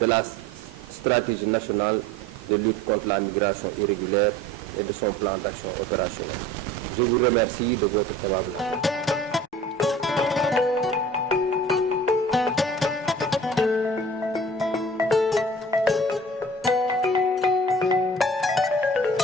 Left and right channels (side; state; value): both; normal; correlation 0.44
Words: de la stratégie nationale de lutte contre la migration irrégulière et de son plan d'action opérationnel. Je vous remercie de votre aimable attention.